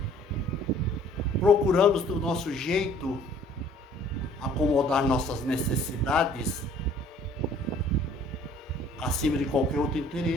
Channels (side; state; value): both; normal; correlation 0.55